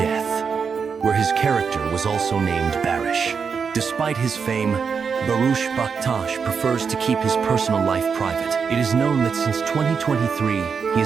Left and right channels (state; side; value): quieter; left; 6.0 dB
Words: where his character was also named Baris. Despite his fame, Barış Baktas prefers to keep his personal life private. It is known that since 2023, he